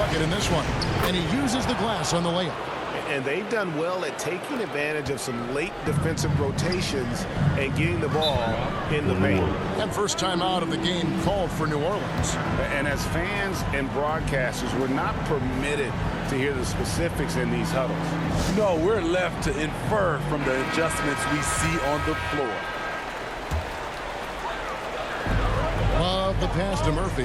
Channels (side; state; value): both; identical; correlation 1.00